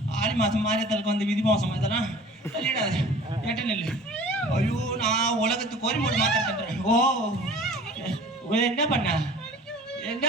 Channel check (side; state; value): both; normal; correlation 0.44